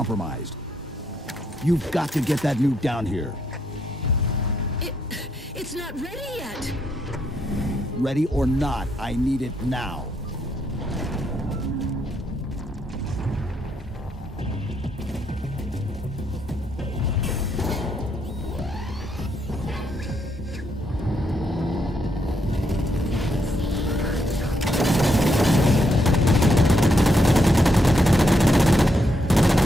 You've got to get that nuke down here. It's not ready yet. Ready or not, I need it now.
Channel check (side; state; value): both; normal; correlation 0.77